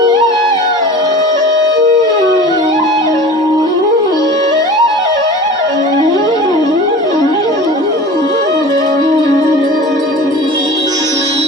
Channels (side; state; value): both; normal; correlation 0.38